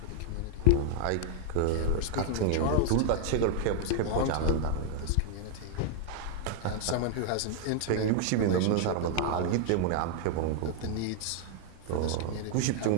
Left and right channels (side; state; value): both; different; correlation -0.01